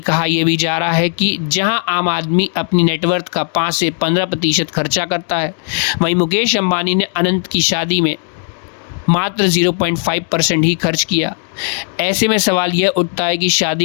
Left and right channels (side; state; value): right; silent; digital silence